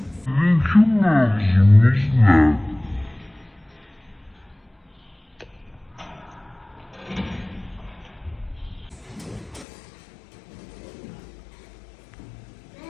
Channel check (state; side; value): drops out; right; at 9.7 s